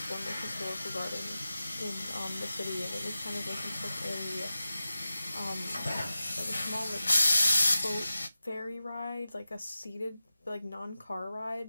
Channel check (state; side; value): inverted; both; correlation -0.93